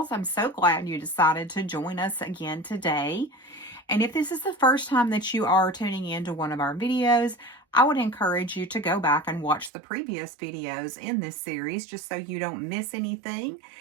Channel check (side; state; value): left; drops out; at 9.7 s